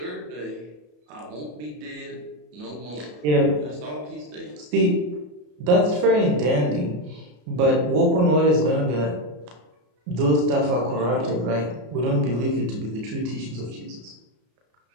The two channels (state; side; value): late; left; 33 ms